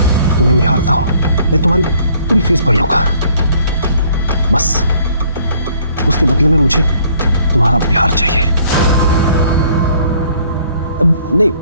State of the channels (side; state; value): both; inverted; correlation -0.61